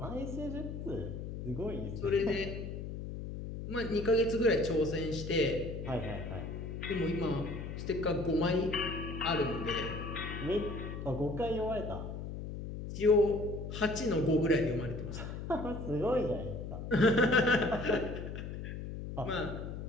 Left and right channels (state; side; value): noise; left; hum, 7 dB below the sound